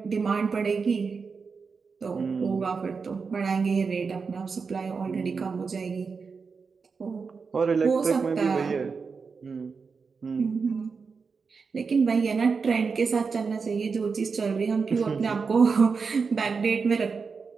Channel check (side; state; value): left; quieter; 5.1 dB